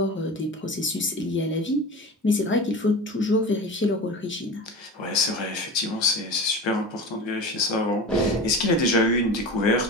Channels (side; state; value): both; normal; correlation 0.31